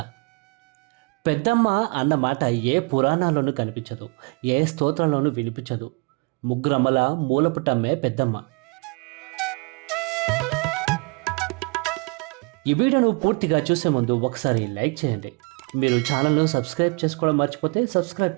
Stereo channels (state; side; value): quieter; left; 30.8 dB